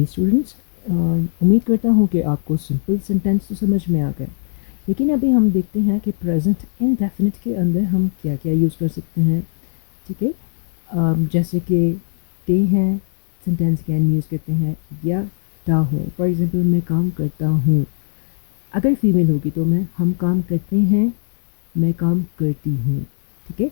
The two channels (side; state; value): right; silent; digital silence